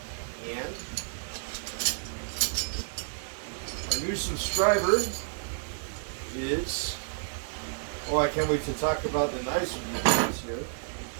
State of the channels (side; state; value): left; silent; digital silence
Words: and our new subscriber is, I can't wait to talk about the knives with you guys here.